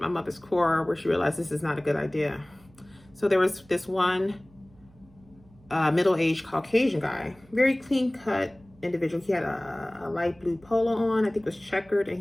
mother's core where she realized this is not a good idea. So there was this one middle-aged Caucasian guy, very clean-cut individual. He had a light blue polo on, I think it was checkered,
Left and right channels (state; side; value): noise; right; hum, 28 dB below the sound